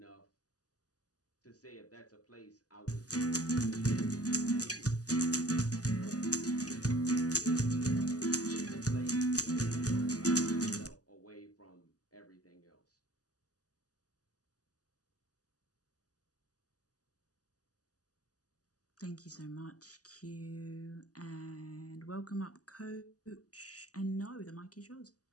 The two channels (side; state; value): right; late; 0.67 ms